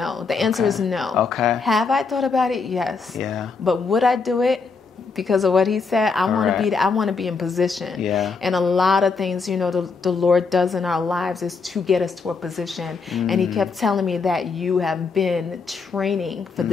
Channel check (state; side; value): quieter; right; 4.7 dB